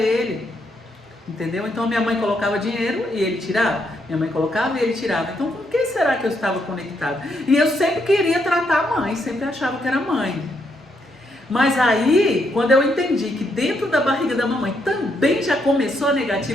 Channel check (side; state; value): both; normal; correlation 0.77